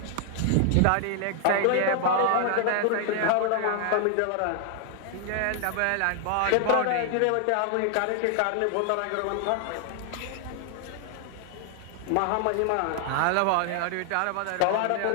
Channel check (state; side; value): different; both; correlation 0.00